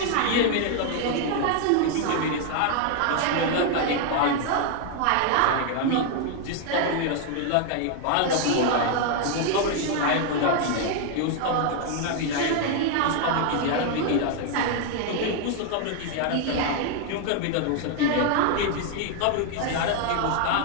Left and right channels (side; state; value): both; different; correlation 0.00